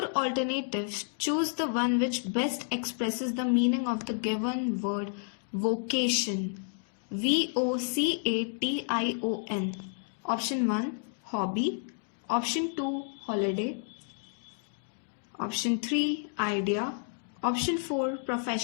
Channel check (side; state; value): right; silent; 57 dB below the other